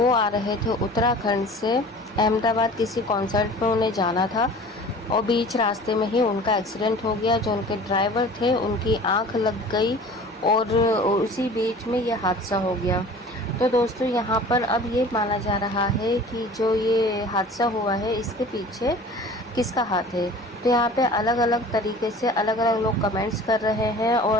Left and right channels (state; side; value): normal; both; correlation 0.43